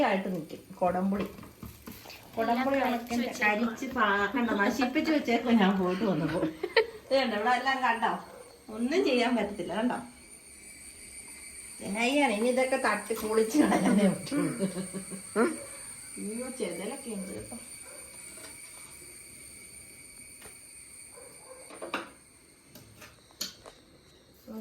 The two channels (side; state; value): both; identical; correlation 1.00